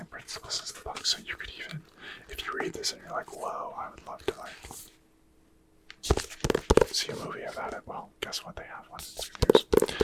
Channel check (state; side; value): identical; both; correlation 1.00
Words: principles as the book, so you could even, if you read this and you're like, whoa, I would love to, like, see a movie about it, well, guess what, they have one. It's good